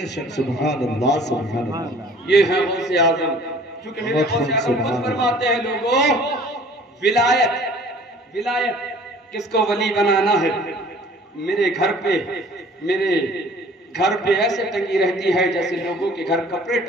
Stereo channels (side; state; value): both; normal; correlation 0.51